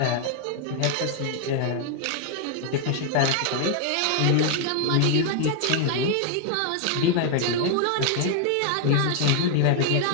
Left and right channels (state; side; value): different; both; correlation 0.00